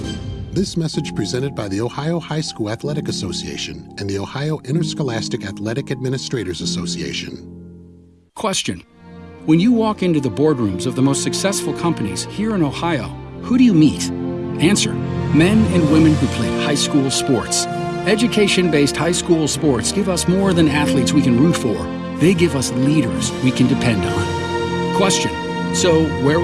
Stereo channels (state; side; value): identical; both; correlation 1.00